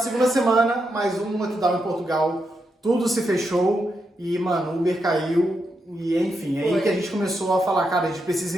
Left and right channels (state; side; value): normal; both; correlation 0.83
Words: semana, mais um lockdown em Portugal, tudo se fechou e, mano, o Uber caiu e, enfim, é aí que a gente começou a falar, cara, a gente precisa